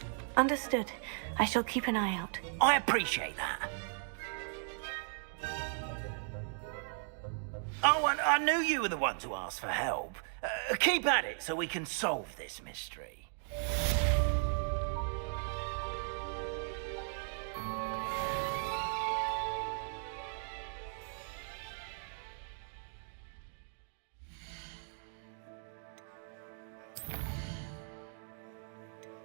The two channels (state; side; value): silent; left; 53 dB below the other